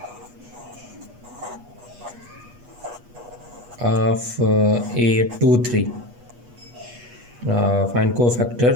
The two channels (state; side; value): late; left; 8.3 ms